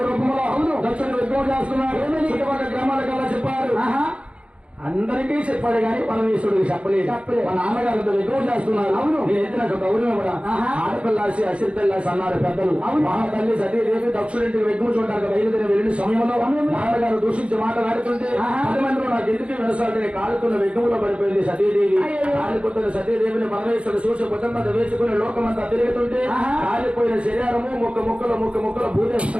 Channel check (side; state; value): left; late; 0.060 ms